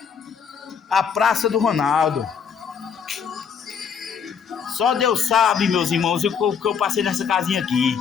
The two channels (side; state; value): right; quieter; 6.8 dB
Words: à Praça do Ronaldo. Só Deus sabe, meus irmãos, o que eu passei nessa casinha aqui.